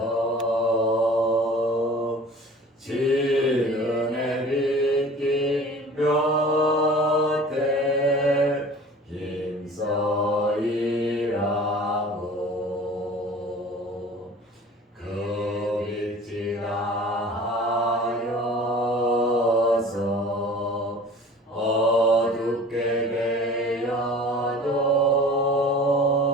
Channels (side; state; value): both; normal; correlation 0.44